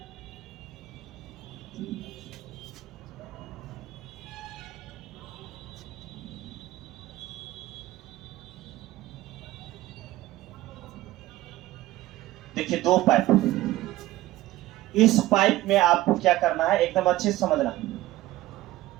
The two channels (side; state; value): left; quieter; 16.3 dB